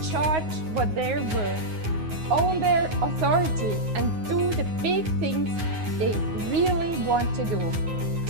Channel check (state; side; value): late; left; 9.5 ms